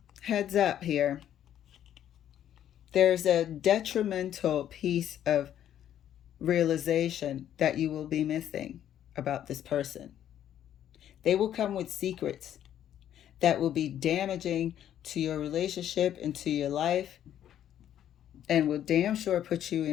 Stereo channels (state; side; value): quieter; right; 10.7 dB